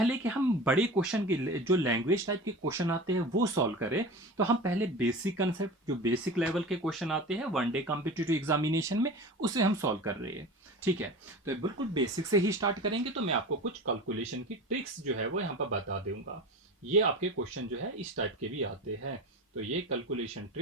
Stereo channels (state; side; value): normal; both; correlation 0.33